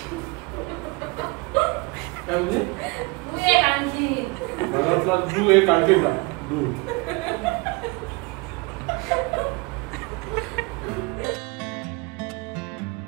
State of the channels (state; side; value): quieter; left; 26.7 dB